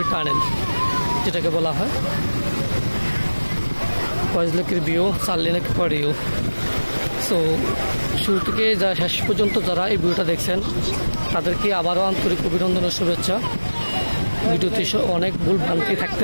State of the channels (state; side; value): inverted; both; correlation -1.00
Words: টানেল যেটাকে বলা হয়। কয়েকলেকের ভিউ, 4 লেনের পরেও। সো শুরু থেকে যা শেষ পর্যন্ত যারা এই ভিডিওটা দেখছেন, তাদেরকে আবারও আন্তরিক অভিনন্দন ও শুভেচ্ছা। ভিডিওতে অনেক ভুল ভ্রান্তি